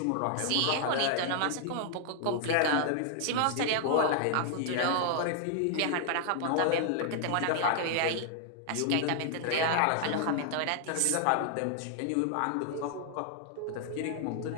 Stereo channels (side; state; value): both; different; correlation 0.00